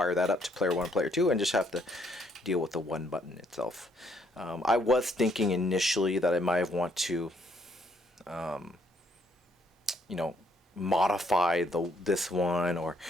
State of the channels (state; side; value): normal; both; correlation 0.69